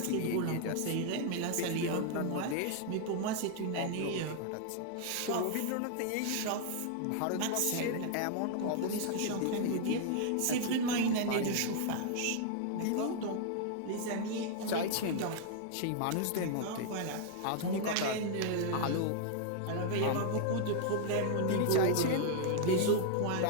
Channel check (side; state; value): both; different; correlation 0.00